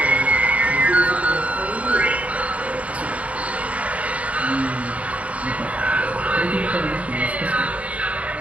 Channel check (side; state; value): left; late; 0.067 ms